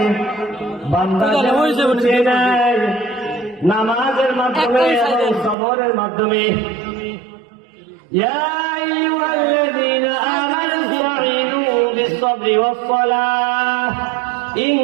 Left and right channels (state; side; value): drops out; left; at 5.6 s